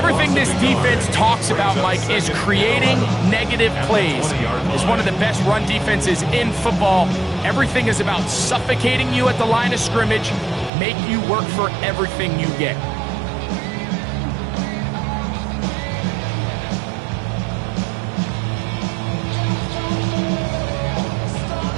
this defense talks about, Mike, is creating negative plays. It's one of the best run defenses in football. Everything is about suffocating you at the line of scrimmage, make you work for everything you get.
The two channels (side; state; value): left; drops out; at 10.7 s